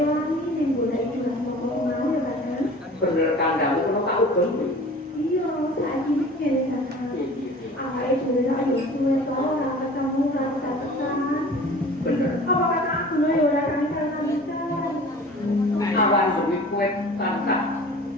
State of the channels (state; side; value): normal; both; correlation 0.43